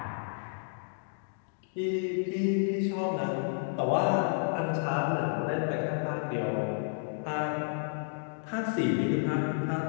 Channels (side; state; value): right; silent; digital silence